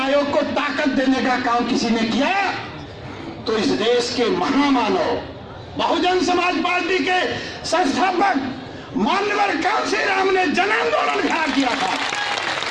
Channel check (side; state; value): both; identical; correlation 1.00